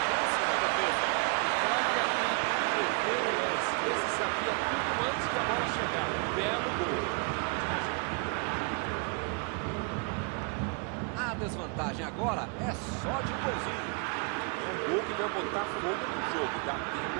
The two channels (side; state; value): left; quieter; 35.0 dB